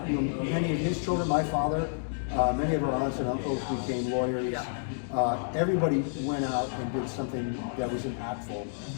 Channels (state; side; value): silent; right; digital silence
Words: many of his children, my father, many of our aunts and uncles became lawyers. Everybody went out and did something that was impactful